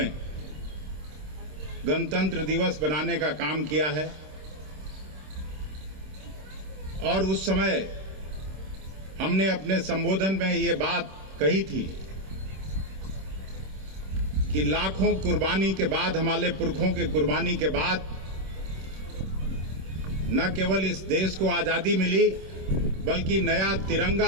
गणतंत्र दिवस बनाने का काम किया है और उस समय हमने अपने संबोधन में ये बात कही थी कि लाखों कुर्बानी के बाद, हमारे पुरखों के कुर्बानी के बाद न केवल इस देश को आजादी मिली बल्कि नया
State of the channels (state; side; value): late; left; 26 ms